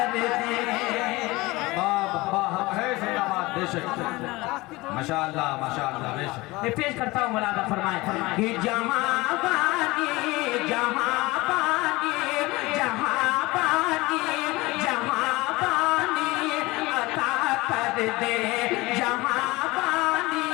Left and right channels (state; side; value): quieter; right; 21.5 dB